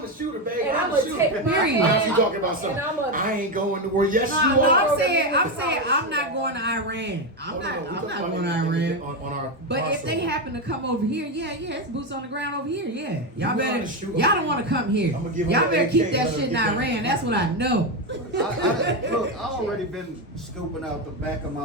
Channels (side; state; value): both; normal; correlation 0.10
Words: a shooter, baby. And I'm I'ma a shooter. take my Period. Now she hand. talking about something. And I'ma. I ain't going to war. Yes, No, you no, are. I'm saying I'm not going to Iran. I'm not going to Iran. On our But if they crossover. happen to come over here, yeah, it's boots on the ground over here, yeah. You Y'all know how better, to shoot 'em. y'all don't want to come here. I'ma give 'em Y'all an better AK, keep that let 'em shit in get that. Iran. That's what I know. Look, I already been scoping out the back of my